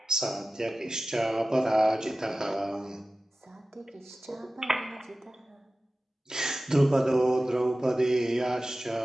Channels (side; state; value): both; normal; correlation 0.96